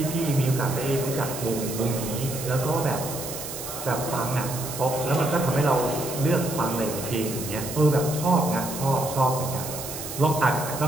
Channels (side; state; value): right; noise; hiss, 8 dB below the sound